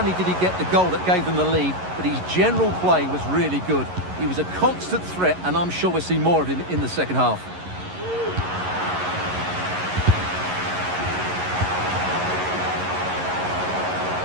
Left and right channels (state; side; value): late; left; 11 ms